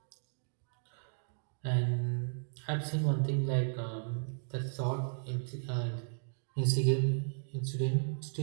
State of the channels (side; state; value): left; silent; digital silence